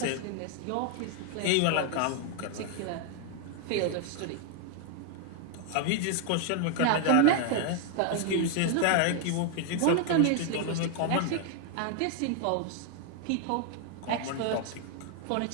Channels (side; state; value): both; different; correlation 0.00